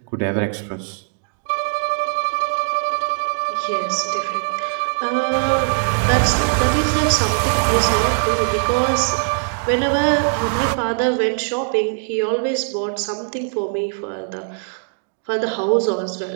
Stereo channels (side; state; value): left; silent; digital silence